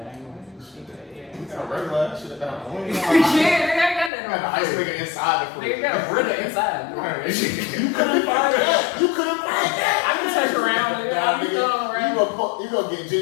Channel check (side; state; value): right; drops out; at 4.1 s